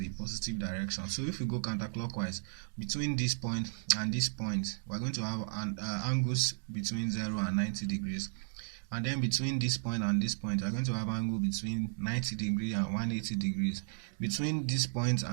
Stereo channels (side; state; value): left; silent; digital silence